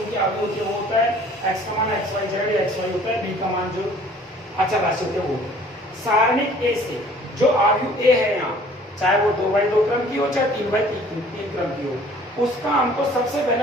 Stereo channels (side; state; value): both; normal; correlation 0.53